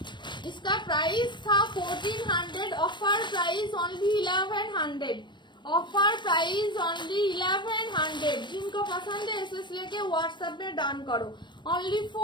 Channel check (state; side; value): late; right; 0.22 ms